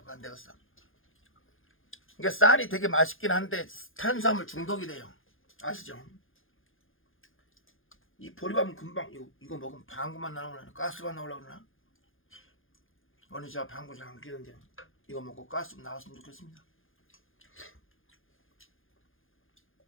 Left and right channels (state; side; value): late; right; 0.59 ms